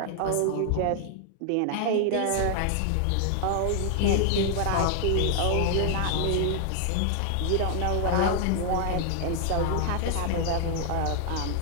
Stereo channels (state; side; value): different; both; correlation 0.00